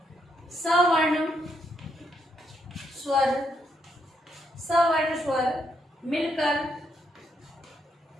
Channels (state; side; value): normal; both; correlation 0.77